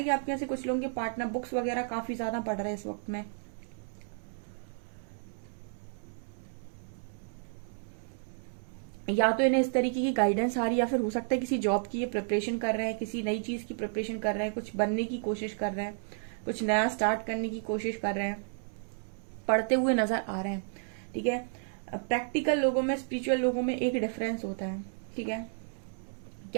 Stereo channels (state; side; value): silent; left; 56 dB below the other